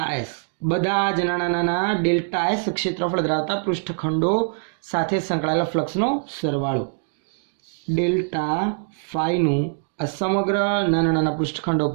એસ, બધા જ નાના નાના ડેલ્ટા એસ ક્ષેત્રફળ ધરાવતા પૃષ્ઠખંડો સાથે સંકળાયેલા ફ્લક્સનો સરવાળો. ડેલ્ટા ફાઈનું આ સમગ્ર નાના નાના પૃષ્ઠખંડો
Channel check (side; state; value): left; silent; digital silence